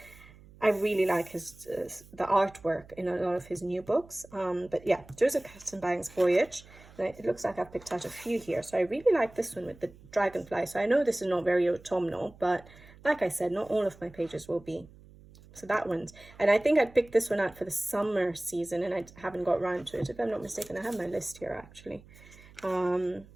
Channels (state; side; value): noise; right; hum, 22 dB below the sound